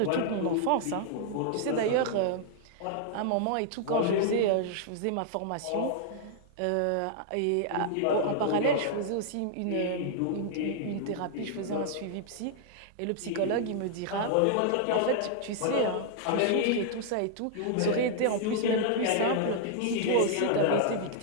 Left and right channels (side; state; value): both; different; correlation -0.01